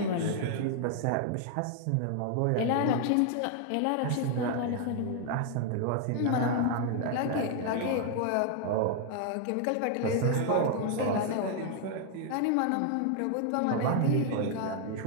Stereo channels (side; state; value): both; different; correlation 0.00